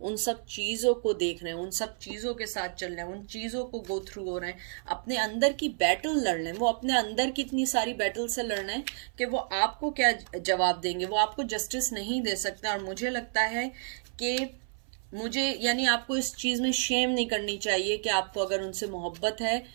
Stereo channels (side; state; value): left; silent; 58 dB below the other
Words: सब चीज़ों को देख रहे हैं, उन सब चीज़ों के साथ चल रहे हैं, उन चीज़ों को गो थ्रू हो रहे हैं, अपने अंदर की बैटल लड़ रहे हैं। वो अपने अंदर की इतनी सारी बैटल से लड़ रहे हैं कि वो आपको क्या जवाब देंगे, वो आपको जस्टिस नहीं दे सकते। और मुझे लगता है कि यानी आपको इस चीज़ में शेम नहीं करनी चाहिए कि आपको अगर उनसे मोहब्बत है,